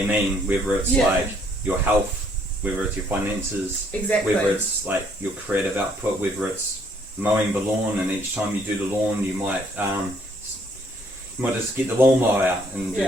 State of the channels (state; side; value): normal; both; correlation 0.65